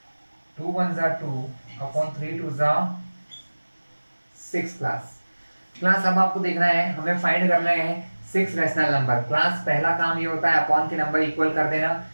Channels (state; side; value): inverted; both; correlation -1.00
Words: 2 1 जा 2 अपॉन 3 2 जा 6 क्लास। अब आपको देखना है, हमें फाइंड करना है 6 रैशनल नंबर। क्लास पहला काम ये होता है अपॉन के नंबर इक्वल कर देना।